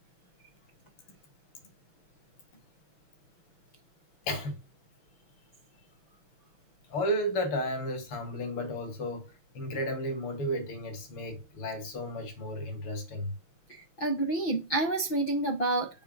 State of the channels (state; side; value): late; right; 6.0 ms